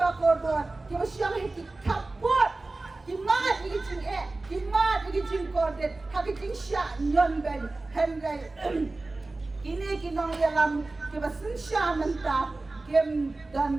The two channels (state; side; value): quieter; left; 3.2 dB